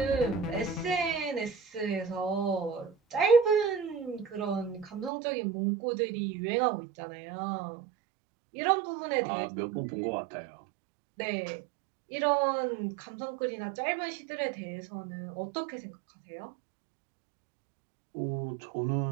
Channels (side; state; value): left; drops out; at 5.1 s